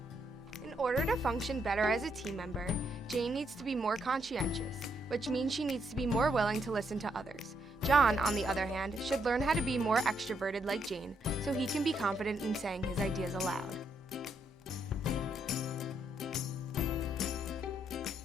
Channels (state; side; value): normal; both; correlation 0.76